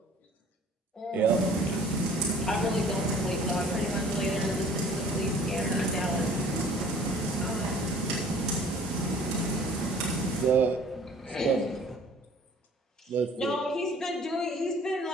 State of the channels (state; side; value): normal; both; correlation 0.51